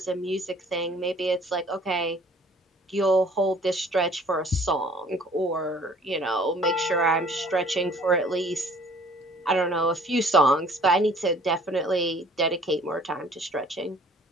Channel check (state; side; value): normal; both; correlation 0.54